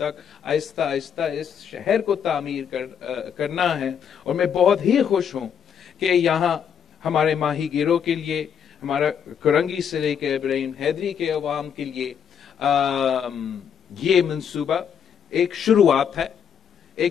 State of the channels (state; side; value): quieter; right; 7.8 dB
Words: आहिस्ता आहिस्ता इस शहर को तामीर करना है। और मैं बहुत ही खुश हूं कि यहाँ हमारे माही गिरों के लिए, हमारा करंगी से लेकर इब्राहिम हैदरी के अवाम के लिए ये मंसूबा एक